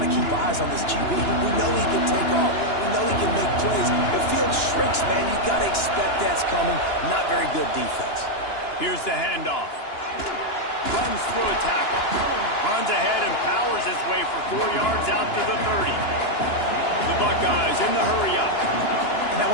to keep eyes on this QB. We know he can take off. We know he can make plays. The field shrinks, man. You got to expect that's coming. Not very good defense. Here's the handoff. Runs through a tackle. Runs ahead and powers his way for 4 yards out to the 30. The Buckeyes in the hurry-up. And that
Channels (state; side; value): late; right; 2.9 ms